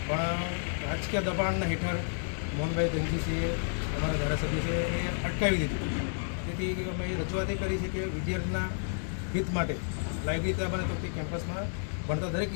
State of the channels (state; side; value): silent; right; digital silence